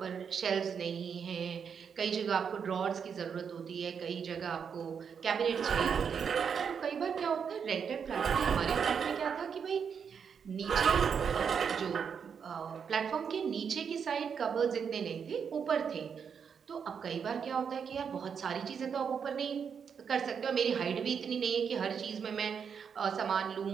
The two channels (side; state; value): left; quieter; 6.8 dB